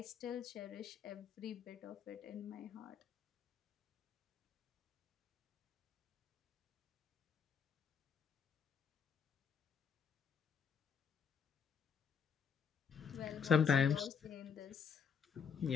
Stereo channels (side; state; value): right; quieter; 6.7 dB